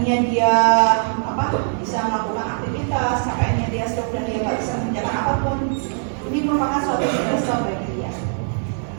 dia bisa melakukan aktivitas, sampainya dia stroke dan dia nggak bisa mengerjakan apapun. Ini merupakan suatu stresor bagi dia.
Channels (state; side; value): silent; left; 63 dB below the other